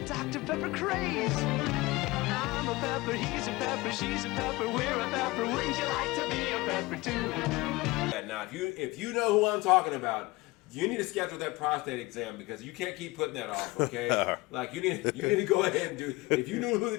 Dr. Pepper craze. I'm a pepper, he's a pepper, she's a pepper, we're a pepper. Wouldn't you like to be a pepper too? Now, if you know who I'm talking about, you need to schedule that prostate exam because you can't keep putting that off, okay? Like you need to go ahead and do. If you knew who the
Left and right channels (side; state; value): right; quieter; 21.7 dB